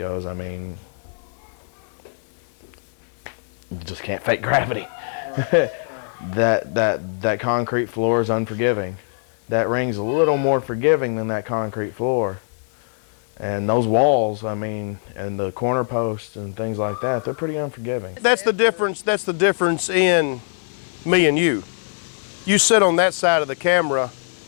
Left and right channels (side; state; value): right; silent; 58 dB below the other